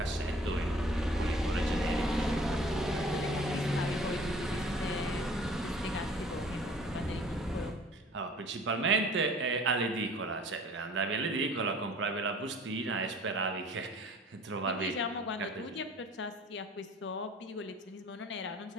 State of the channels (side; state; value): both; normal; correlation 0.50